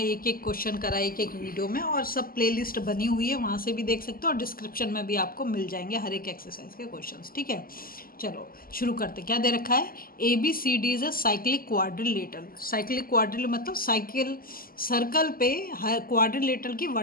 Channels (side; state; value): right; late; 0.42 ms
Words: एक एक क्वेश्चन करा एक एक वीडियो में, और सब प्लेलिस्ट बनी हुई है, वहाँ से भी देख सकते हो, और डिस्क्रिप्शन में भी आपको मिल जाएंगे हर एक एक्सरसाइज के क्वेश्चंस। ठीक है, चलो शुरू करते। क्या दे रखा है? ABCD is a cyclic quadrilateral. Cyclic क्वाड्रिल मतलब साइकिल सर्कल पे क्वाड्रिलेटरल की